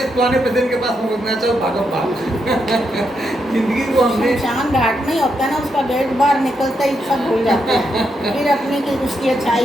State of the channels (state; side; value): normal; both; correlation 0.81